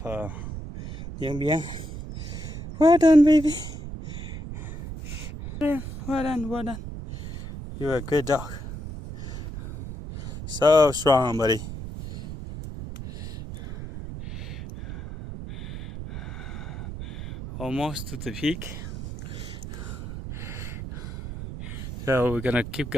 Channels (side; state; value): right; noise; rumble, 9 dB below the sound